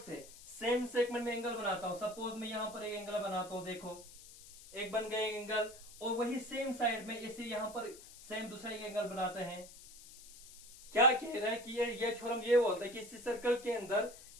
से सेम सेगमेंट में एंगल बनाता हूं, सपोज मैं यहां पर एक एंगल बनाता हूं, देखो एक बन गए एंगल, और वही सेम साइड में इसे यहां पर सेम दूसरा एक एंगल बनाते हैं। क्या कह रहा है कि ये थ्योरम ये बोलता है कि इसी सर्कल के अंदर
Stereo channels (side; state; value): left; noise; hiss, 18 dB below the sound